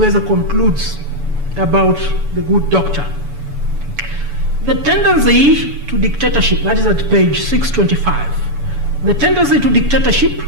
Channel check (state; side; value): late; left; 7.0 ms